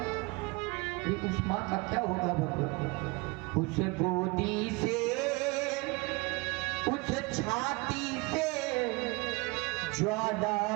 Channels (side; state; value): left; quieter; 26.3 dB